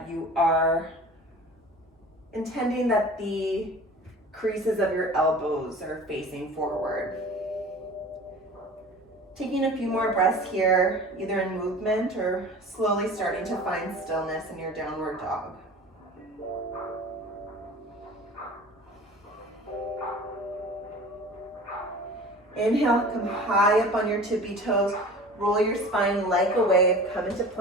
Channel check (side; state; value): both; normal; correlation 0.40